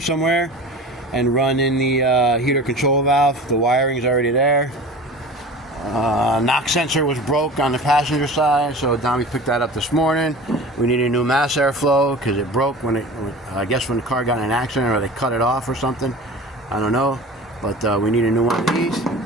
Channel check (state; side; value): normal; both; correlation 0.36